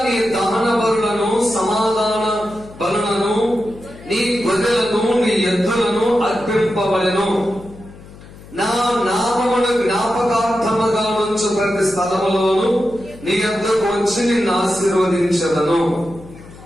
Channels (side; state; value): left; noise; hum, 19 dB below the sound